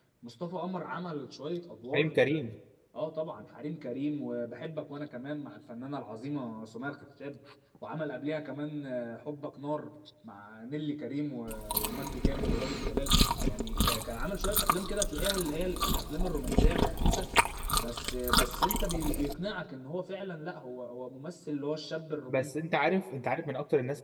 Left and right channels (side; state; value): both; identical; correlation 1.00